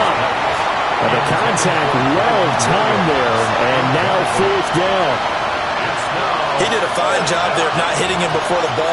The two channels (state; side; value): identical; both; correlation 1.00